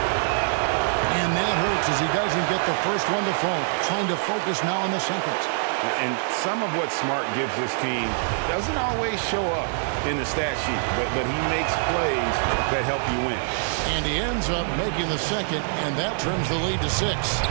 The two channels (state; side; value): silent; left; 62 dB below the other